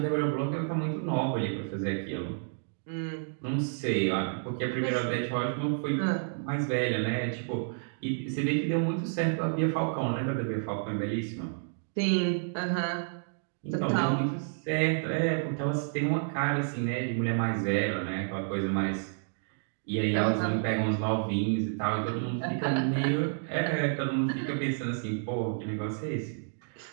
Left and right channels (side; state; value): left; silent; digital silence